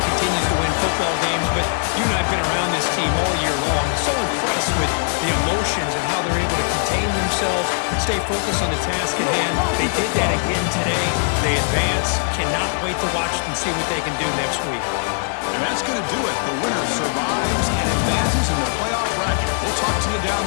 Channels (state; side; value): silent; right; 63 dB below the other